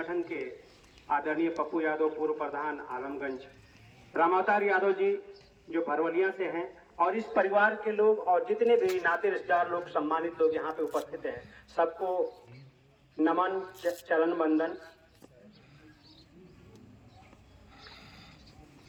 के आदरणीय पप्पू यादव पूर्व प्रधान आलमगंज, रामावतार यादव जी जो भरवलिया से हैं, और इस परिवार के लोग और जितने भी नाते रिश्तेदार लोग, सम्मानित लोग यहाँ पे उपस्थित हैं, सबको नमन, चरण वंदन।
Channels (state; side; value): identical; both; correlation 1.00